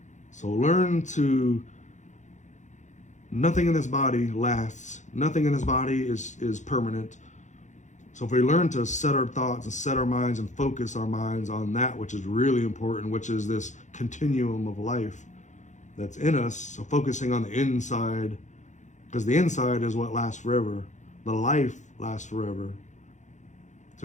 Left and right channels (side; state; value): right; late; 0.35 ms